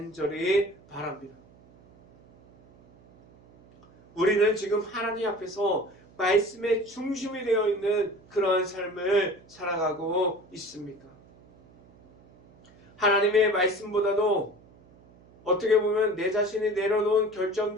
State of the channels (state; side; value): noise; right; hum, 27 dB below the sound